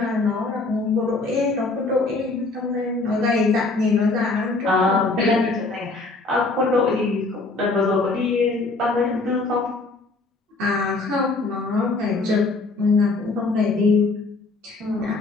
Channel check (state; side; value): quieter; right; 3.5 dB